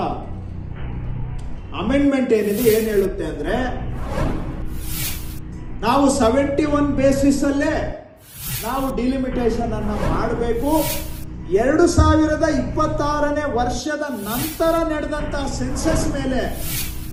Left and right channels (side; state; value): both; identical; correlation 1.00